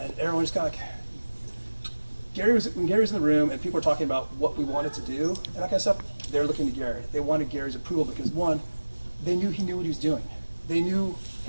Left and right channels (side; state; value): both; inverted; correlation -1.00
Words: everyone just kind of like, when Gary was in the room and people were talking about what we wanted to do and that kind of stuff, they were looking to Gary. They wanted Gary's approval because, one, they knew he knew what he was doing. They knew